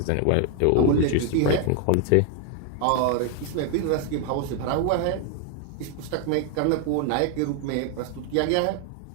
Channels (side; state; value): both; different; correlation 0.00